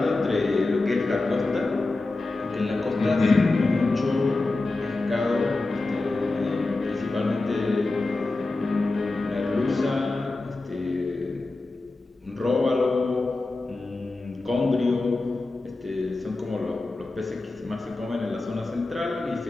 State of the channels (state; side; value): quieter; right; 3.2 dB